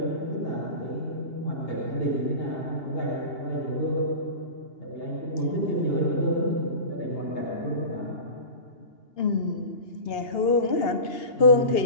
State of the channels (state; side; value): late; right; 2.8 ms